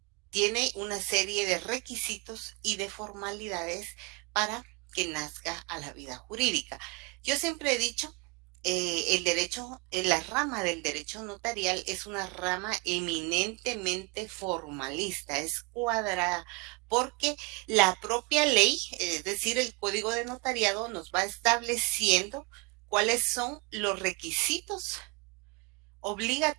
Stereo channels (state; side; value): quieter; left; 27.6 dB